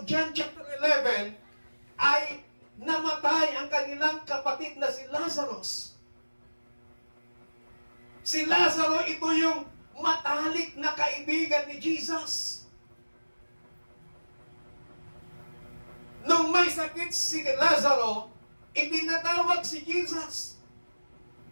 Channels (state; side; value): inverted; both; correlation -1.00